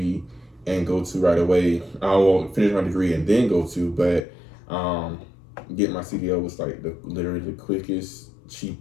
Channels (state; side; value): drops out; right; at 4.2 s